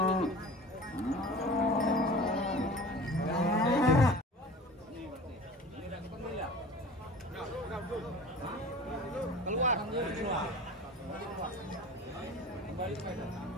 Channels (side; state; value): both; normal; correlation 0.39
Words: Keluar. Kembali ke medan.